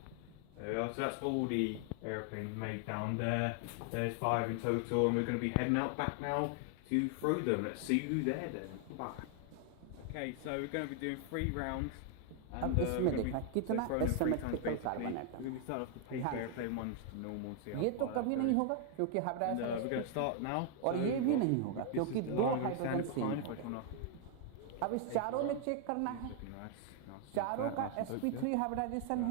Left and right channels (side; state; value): both; different; correlation 0.00